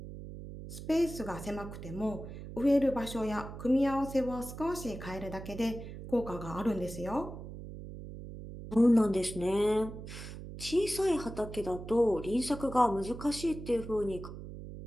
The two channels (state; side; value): noise; right; hum, 11 dB below the sound